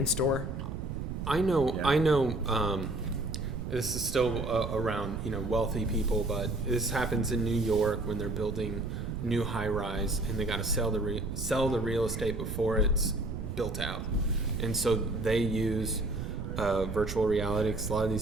store. I know. This is still around wealthy people, but this happens in New York when they're building new high rise, and they got to sell the real estate before it's built out, and so they use virtual reality. 'Cause a lot of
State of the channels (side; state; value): right; noise; rumble, 5 dB below the sound